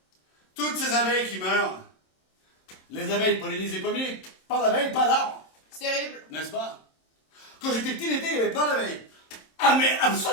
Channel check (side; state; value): right; late; 27 ms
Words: Toutes ces abeilles qui meurent. Les abeilles pollinisent les pommiers. Pas d'abeilles, pas d'arbres. C'est terrible. N'est-ce pas? Quand j'étais petit l'été, il y avait plein d'abeilles. Ah mais